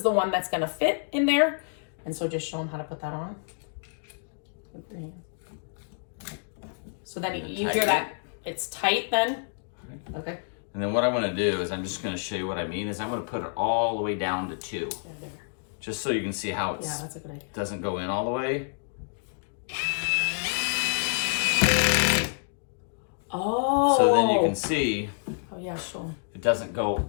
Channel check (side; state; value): right; silent; 59 dB below the other